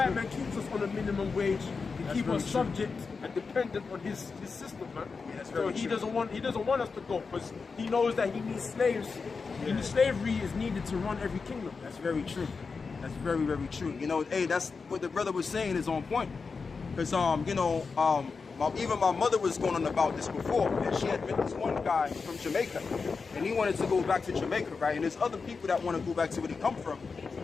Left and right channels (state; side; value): quieter; right; 4.8 dB